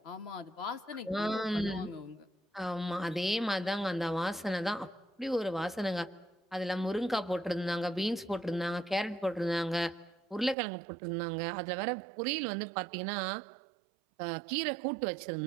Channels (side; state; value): left; drops out; at 10.6 s